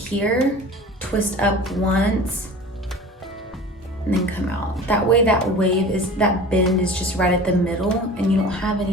twist up once, and then come out. That way that bend is just right at the middle and you don't have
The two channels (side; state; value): both; normal; correlation 0.39